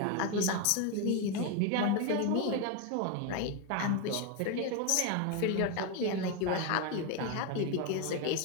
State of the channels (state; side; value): different; both; correlation 0.02